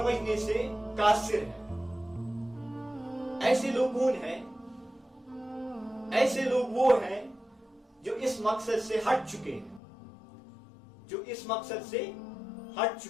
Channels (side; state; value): right; drops out; at 9.8 s